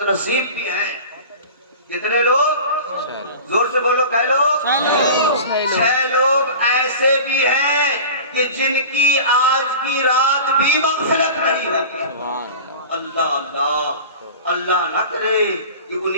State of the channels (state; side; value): inverted; both; correlation -0.36